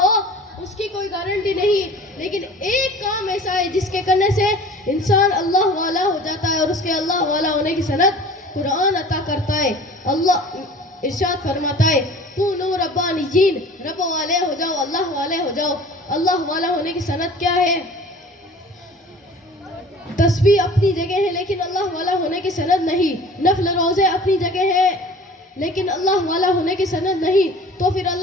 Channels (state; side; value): normal; both; correlation 0.44